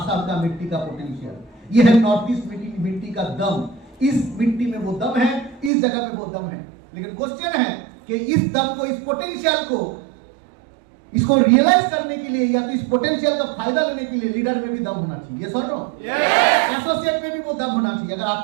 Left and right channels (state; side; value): drops out; left; at 5.7 s